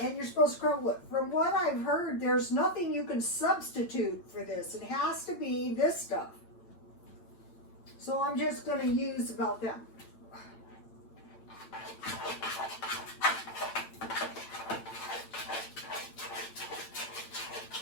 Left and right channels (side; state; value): right; late; 8.8 ms